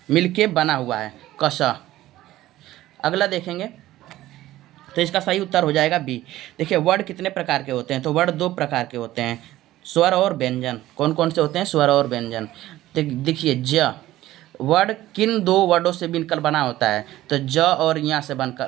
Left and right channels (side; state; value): left; quieter; 15.2 dB